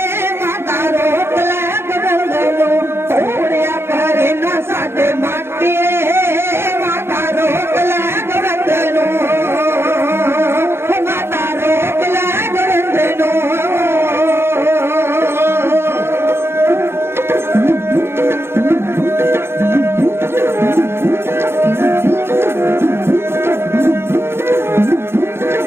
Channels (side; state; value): left; late; 0.12 ms